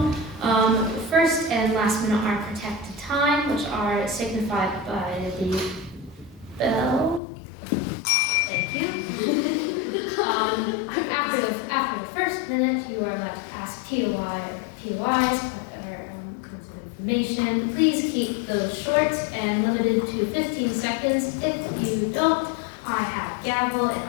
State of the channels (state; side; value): drops out; right; at 7.2 s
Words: First and last minute are protected time, which are signified by the bell. Thank you. After the first minute, you are allowed to ask POIs, kinds of information. Please keep those short and limited to 15 seconds. If you don't, I have gavel